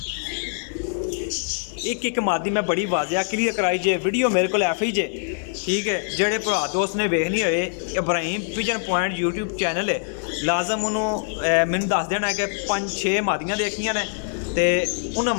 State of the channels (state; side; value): silent; right; digital silence